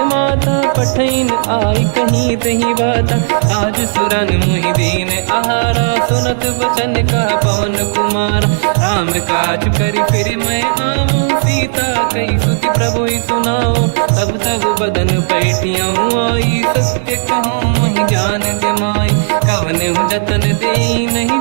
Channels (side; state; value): left; silent; digital silence